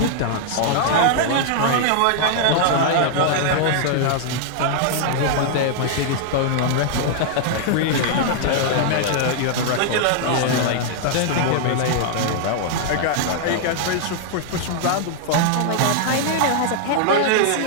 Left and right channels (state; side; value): different; both; correlation -0.01